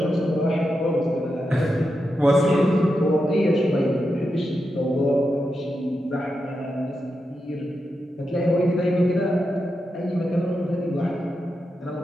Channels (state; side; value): normal; both; correlation 0.87